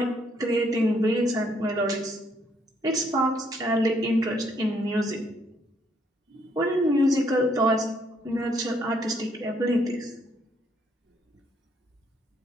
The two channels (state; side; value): normal; both; correlation 0.70